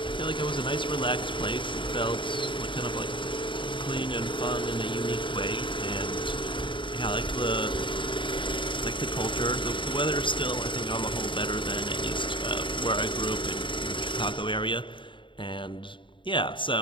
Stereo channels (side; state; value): right; late; 0.24 ms